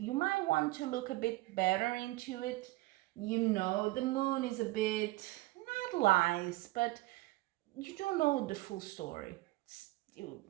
might want to look a bit better into it. The Moon is a bit, not lies, but you don't know the full story.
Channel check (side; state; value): left; quieter; 20.0 dB